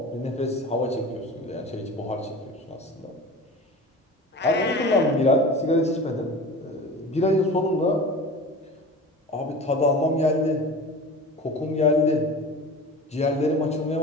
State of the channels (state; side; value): normal; both; correlation 0.35